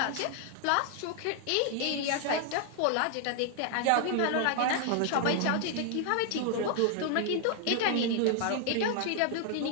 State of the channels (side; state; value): both; different; correlation 0.00